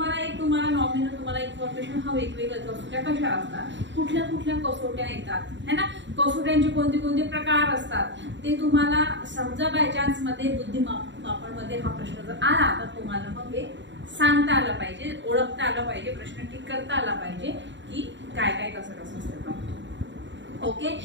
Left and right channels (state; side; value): late; left; 0.53 ms